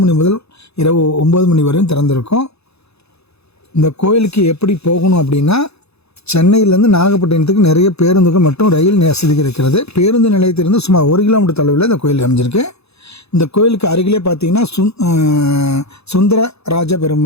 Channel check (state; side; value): late; right; 0.79 ms